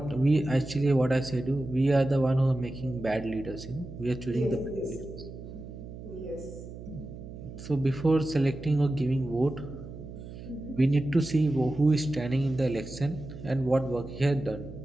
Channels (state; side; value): noise; right; hum, 13 dB below the sound